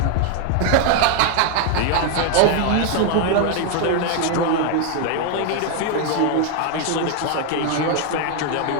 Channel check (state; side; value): different; both; correlation 0.01